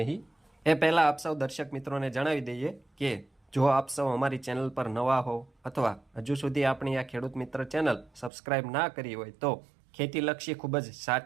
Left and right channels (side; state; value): left; drops out; at 8.3 s